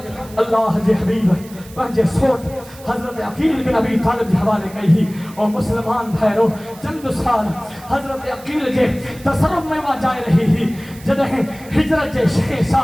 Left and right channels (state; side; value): noise; right; hiss, 21 dB below the sound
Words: اللہ جے حبیب پنجے سوٹ حضرت عقیل بن ابی طالب جے حوالے کہی اور مسلمان بھائرو چند سال حضرت عقیل جے تصرف میں وہاں جائے رہی ہی جدہیں ہجرت جے 6